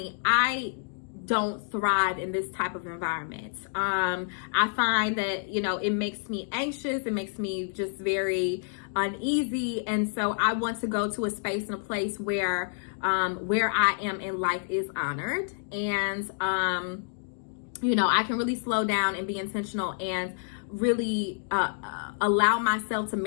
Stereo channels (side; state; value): right; silent; digital silence